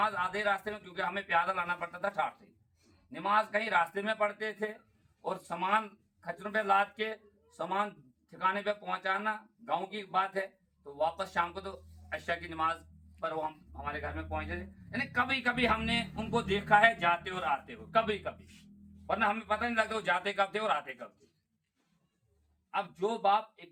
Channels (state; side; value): identical; both; correlation 1.00